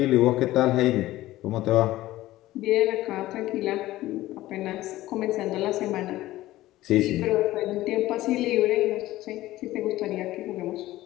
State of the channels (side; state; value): right; quieter; 16.1 dB